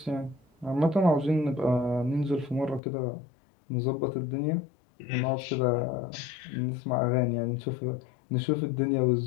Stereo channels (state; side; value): drops out; right; at 2.8 s